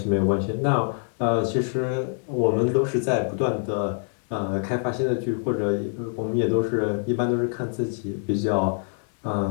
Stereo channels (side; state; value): right; silent; 59 dB below the other